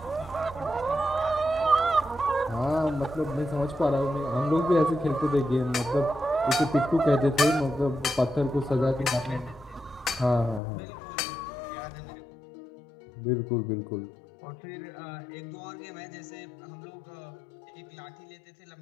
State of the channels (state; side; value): drops out; right; at 10.6 s